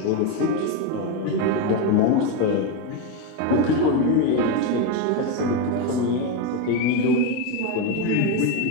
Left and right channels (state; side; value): different; both; correlation 0.04